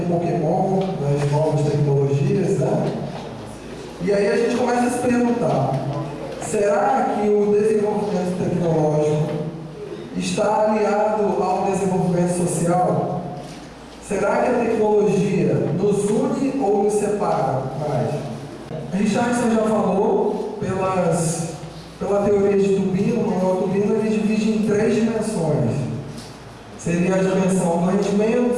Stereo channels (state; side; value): identical; both; correlation 1.00